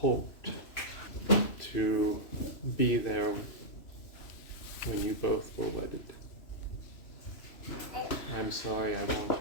to be there when you both were wedded. I'm sorry I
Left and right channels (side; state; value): right; late; 3.0 ms